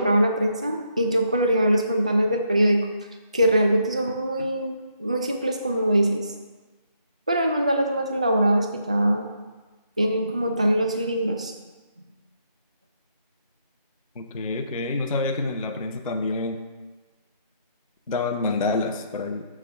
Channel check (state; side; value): inverted; both; correlation -0.75